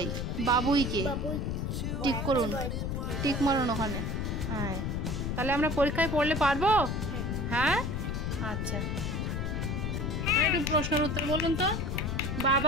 বাবুইকে। টিক করুন, টিক মারুন ওখানে। হ্যাঁ, তাহলে আমরা পরীক্ষায় পড়লে পারবো? হ্যাঁ, আচ্ছা। একটু প্রশ্নের উত্তর বলুন তো।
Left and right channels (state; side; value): noise; left; rumble, 1 dB below the sound